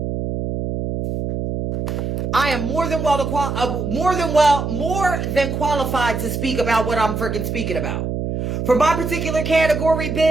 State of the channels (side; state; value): right; noise; hum, 3 dB below the sound